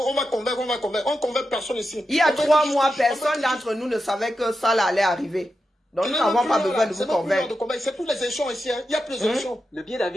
convaincre. On convainc personne ici. Il y a 3 mois, personne d'entre nous ne savait que ça là allait arriver. Donc nous n'avons pas besoin de vous convaincre. C'est pour les échelons ici. Il y a plus d'échelons. Le billet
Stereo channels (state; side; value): normal; both; correlation 0.89